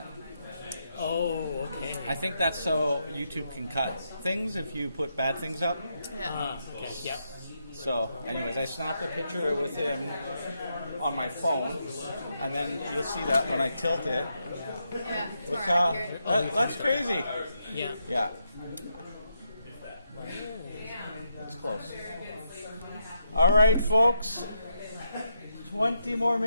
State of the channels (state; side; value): inverted; both; correlation -0.81